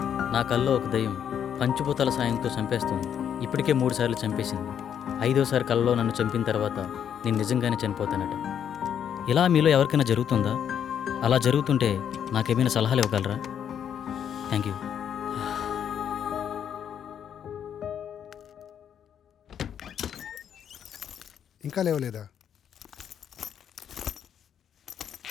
నా కల్లో ఒక దయ్యం పంచభూతాల సాయంతో చంపేస్తుంది. ఇప్పటికే 3 సార్లు చంపేసింది. 5వసారి కల్లో నన్ను చంపిన తర్వాత నేను నిజంగానే చనిపోతానట. ఇలా మీలో ఎవరికైనా జరుగుతుందా? అలా జరుగుతుంటే నాకేమైనా సలహాలు ఇవ్వగలరా? Thank you. ఇంకా లేవలేదా?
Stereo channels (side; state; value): right; quieter; 8.8 dB